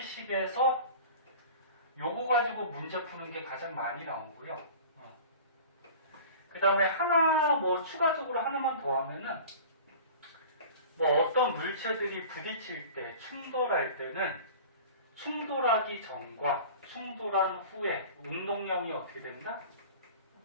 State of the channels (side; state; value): both; inverted; correlation -0.40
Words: 식에서 요거 가지고 문제 푸는 게 가장 많이 나오고요. 그 다음에 하나 추가적으로 하나만 더 하면은 어떤 물체들이 부딪힐 때 충돌할 때는 충돌하기 전과 충돌한 후에 운동량이 어떻게 된다?